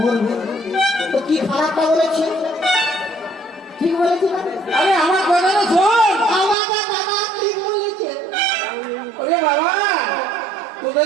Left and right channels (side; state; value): left; drops out; at 6.6 s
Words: মরবে তো কি খারাপটা বলেছে? ঠিক বলেছে না? আরে আমার কথাটা শোন। আমার দাদা ঠিক বলেছে। ওরে বাবা,